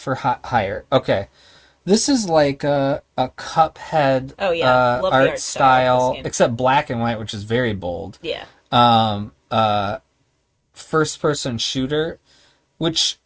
hire. Okay. This is like a Cuphead art style, except black and white, which is very bold. Yeah. First person shooter, which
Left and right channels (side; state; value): both; identical; correlation 1.00